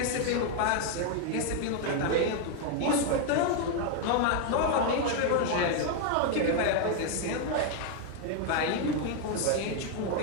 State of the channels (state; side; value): different; both; correlation 0.01